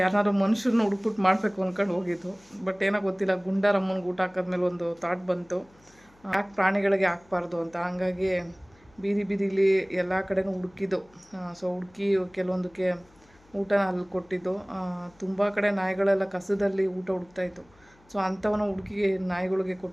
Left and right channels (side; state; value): left; noise; hum, 30 dB below the sound